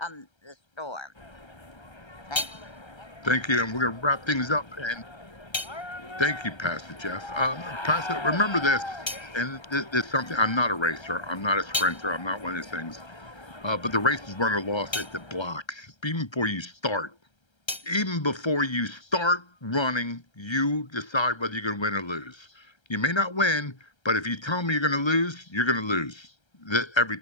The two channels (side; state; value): right; late; 1.3 ms